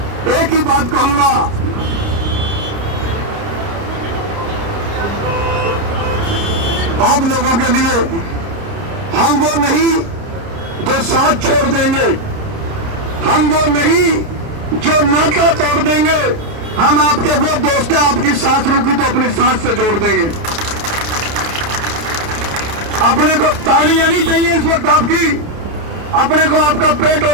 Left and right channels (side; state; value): left; late; 30 ms